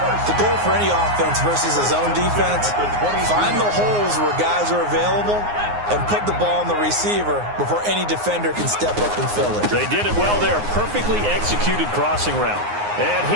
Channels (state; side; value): late; left; 9.6 ms